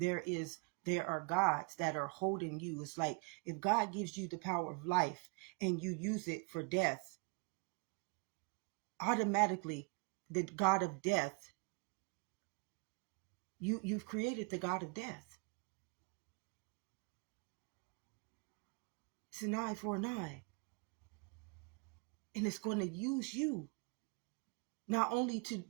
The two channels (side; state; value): left; quieter; 32.8 dB